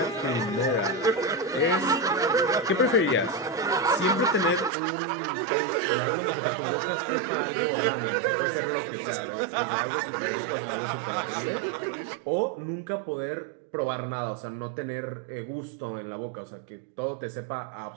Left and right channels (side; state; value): left; drops out; at 4.7 s